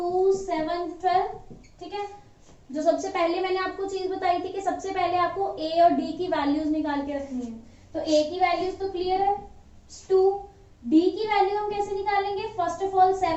7 12, ठीक है। जो सबसे पहले मैंने आपको चीज बताई थी कि सबसे पहले आपको ए और डी की वैल्यूज निकाल के रखनी है। तो ए की वैल्यूज तो क्लियर है 2, डी की वैल्यू हम कैसे निकालेंगे, फर्स्ट ऑफ ऑल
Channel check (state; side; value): identical; both; correlation 1.00